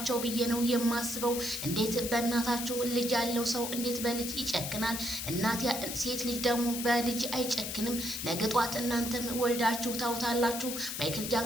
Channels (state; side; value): noise; left; hiss, 5 dB below the sound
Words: ብዬ ነው የማስበው። እንዴት በእናታችሁ ልጅ ያለው ሰው እንዴት በልጅ ይጨክናል? እናት ሴት ልጅ ደግሞ በልጅ አይጨክንም። ነገ ጧት እናንተም ወልዳችሁ ታውታላችሁ። ማይክል